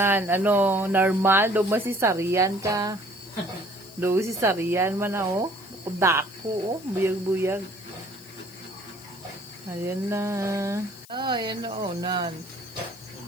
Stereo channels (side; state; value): left; noise; hiss, 21 dB below the sound